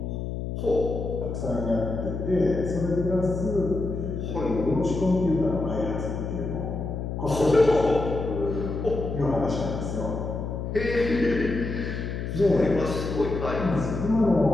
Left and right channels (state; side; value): noise; left; hum, 4 dB below the sound